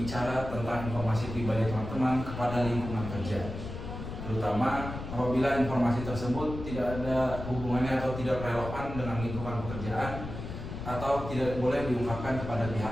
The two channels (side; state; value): left; noise; rumble, 8 dB below the sound